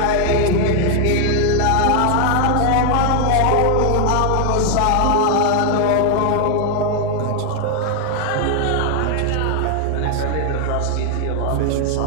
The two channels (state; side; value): different; both; correlation 0.01